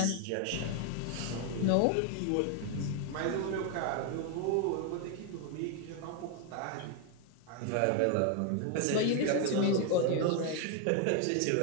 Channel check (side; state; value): both; different; correlation 0.01